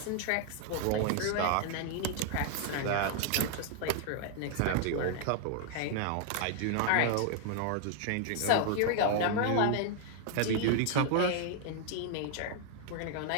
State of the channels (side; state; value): both; different; correlation 0.00